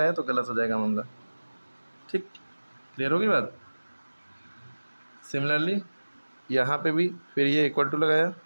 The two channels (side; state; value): both; inverted; correlation -1.00